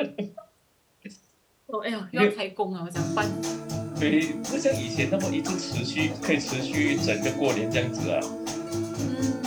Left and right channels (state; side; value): identical; both; correlation 1.00